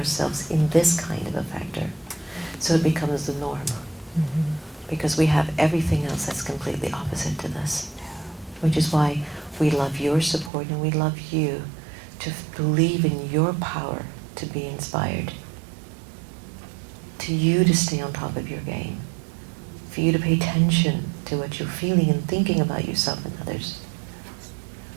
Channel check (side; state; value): left; drops out; at 10.5 s